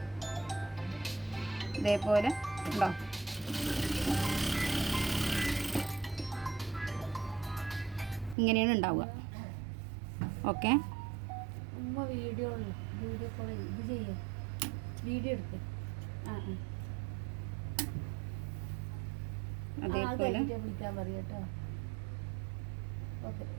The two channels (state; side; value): drops out; left; at 8.3 s